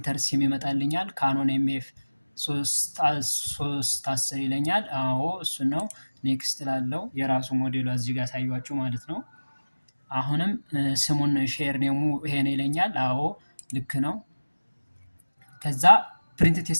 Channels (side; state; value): both; inverted; correlation -1.00